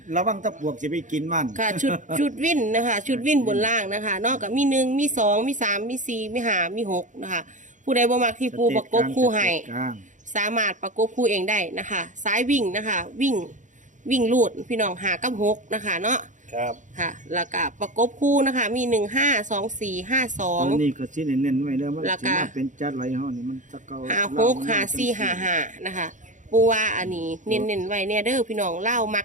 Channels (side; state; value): left; late; 0.36 ms